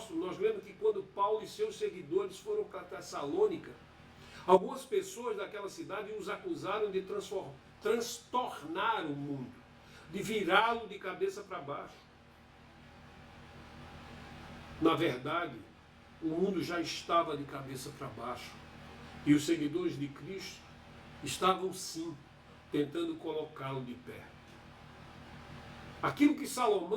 nós lemos que quando Paulo e seus seguidores foram para Tessalônica, algumas pessoas daquela cidade os acusaram de transtornar o mundo, de virá-lo de cabeça para baixo. Na verdade, o mundo já estava de cabeça para baixo e os seguidores de Cristo estavam sim tentando colocá-lo de pé. Aquilo que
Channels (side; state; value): both; identical; correlation 1.00